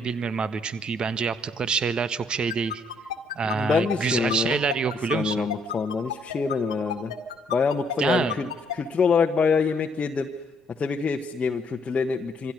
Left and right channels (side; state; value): both; normal; correlation 0.68